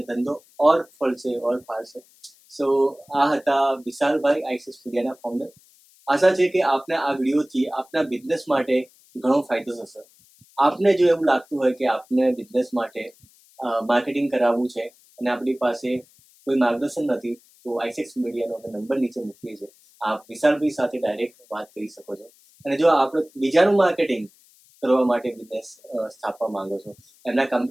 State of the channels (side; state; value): left; noise; hiss, 29 dB below the sound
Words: ધંધો ઓર ફળશે, ઓર ફાળશે. સો આ હતા વિશાલભાઈ, આઈસિસ મીડિયાના ફાઉન્ડર. આશા છે કે આપને આ વિડીયોથી આપના બિઝનેસ માટે ઘણો ફાયદો થશે. આપને જો એવું લાગતું હોય કે આપને બિઝનેસ માટે માર્કેટિંગ કરાવવું છે અને આપણી પાસે કોઈ માર્ગદર્શન નથી, તો આઈસેક્સ મીડિયાનો અમે નંબર નીચે મૂકીએ છીએ. આપ વિશાલભાઈ સાથે ડાયરેક્ટ વાત કરી શકો છો. અને જો આપણે બીજાનું માર્કેટિંગ કરવા માટે બિઝનેસ સ્થાપવા માંગો છો, એમના